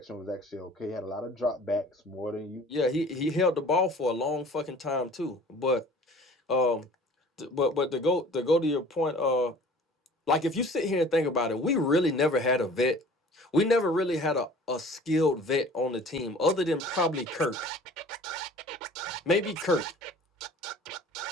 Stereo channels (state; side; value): normal; both; correlation 0.47